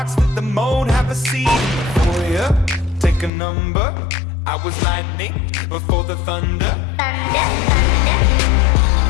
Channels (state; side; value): drops out; right; at 3.3 s